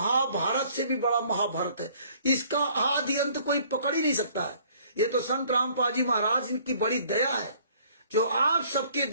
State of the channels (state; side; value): inverted; both; correlation -0.58